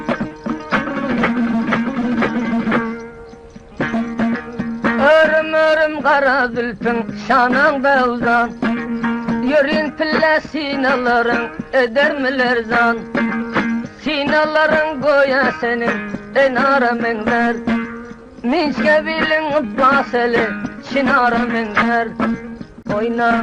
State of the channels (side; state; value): both; identical; correlation 1.00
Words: Kara zülfün şananda uzan, yürün pille sinaların edermiler zan. Sinaların goya senin enara menler, minçke bilin baseli şinara menler.